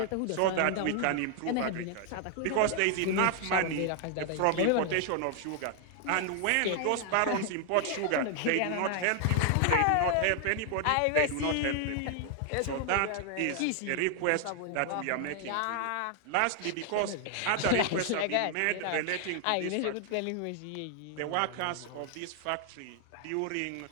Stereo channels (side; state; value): both; different; correlation 0.00